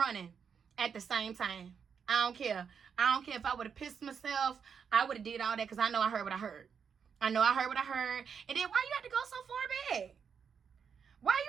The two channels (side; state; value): left; quieter; 6.8 dB